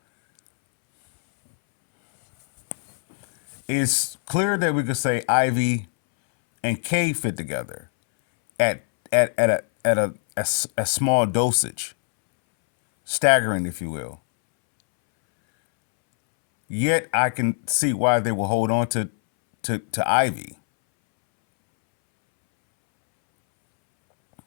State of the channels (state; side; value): silent; right; 64 dB below the other